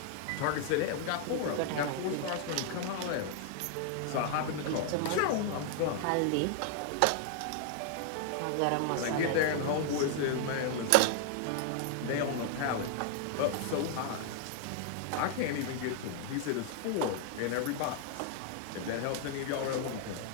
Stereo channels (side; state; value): both; different; correlation 0.00